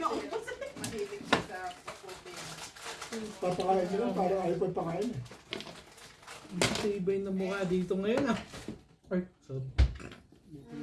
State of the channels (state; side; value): identical; both; correlation 1.00